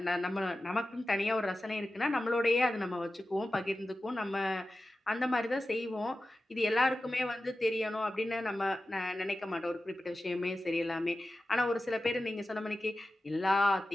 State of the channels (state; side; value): normal; both; correlation 0.94